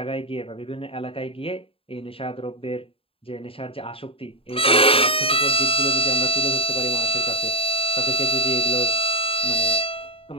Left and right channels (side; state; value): right; late; 0.27 ms